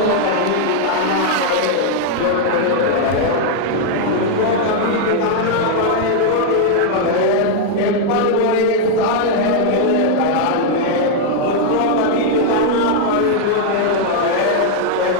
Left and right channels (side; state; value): both; different; correlation 0.00